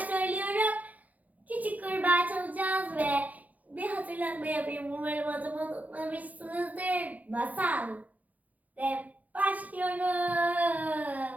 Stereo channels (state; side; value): late; left; 0.077 ms